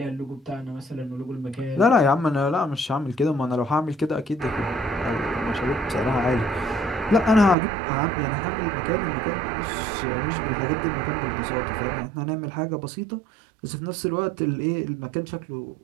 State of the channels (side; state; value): left; drops out; at 7.6 s